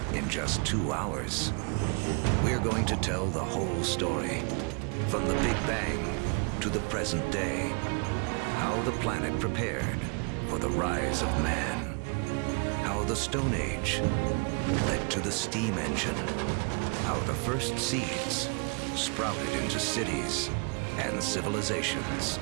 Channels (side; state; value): left; quieter; 34.1 dB